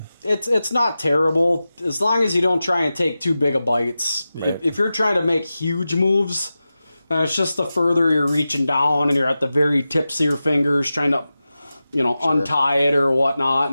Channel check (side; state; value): both; inverted; correlation -0.94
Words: it's not terrible as long as you don't try and take too big of bites. Right. If you're trying to make huge moves, then it's just the further you're reaching down and you're at the very tips of your fingers trying to, untie it or whatnot